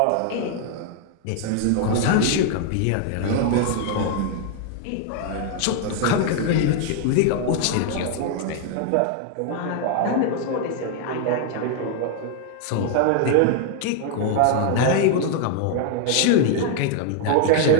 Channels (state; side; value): different; both; correlation 0.00